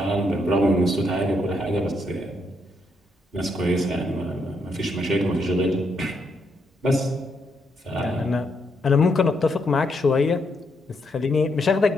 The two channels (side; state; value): both; normal; correlation 0.77